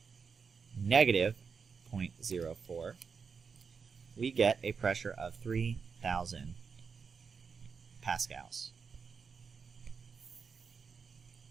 negative 0.04. We get a pressure of 3,000 pascals.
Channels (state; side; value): quieter; left; 5.7 dB